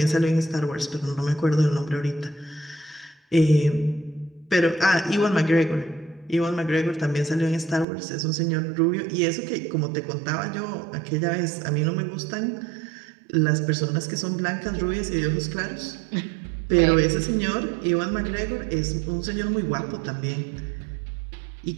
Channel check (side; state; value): left; drops out; at 7.9 s